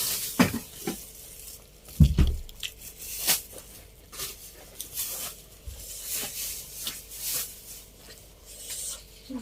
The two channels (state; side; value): identical; both; correlation 1.00